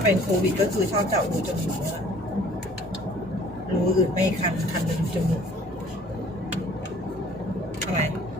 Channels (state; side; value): normal; both; correlation 0.54